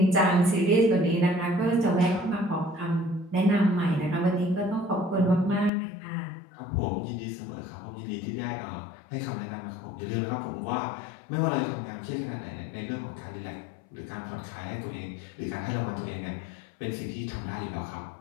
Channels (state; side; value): drops out; right; at 5.7 s